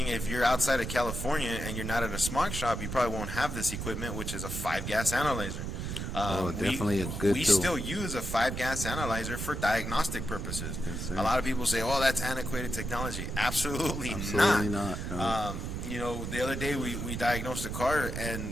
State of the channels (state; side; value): noise; right; rumble, 4 dB below the sound